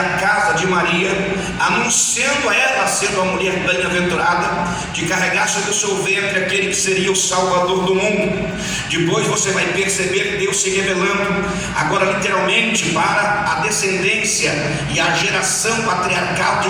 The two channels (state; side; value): identical; both; correlation 1.00